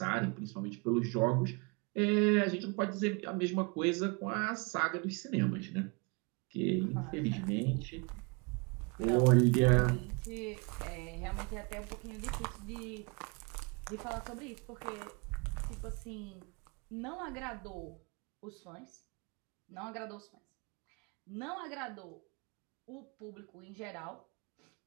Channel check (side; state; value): left; quieter; 30.7 dB